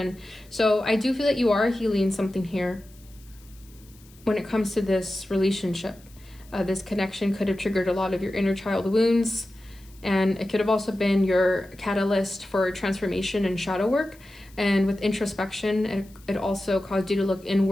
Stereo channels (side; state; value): left; noise; hiss, 27 dB below the sound